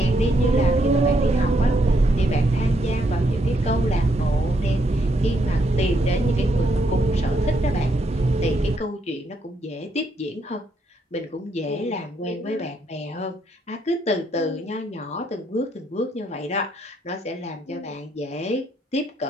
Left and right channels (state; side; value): normal; both; correlation 0.75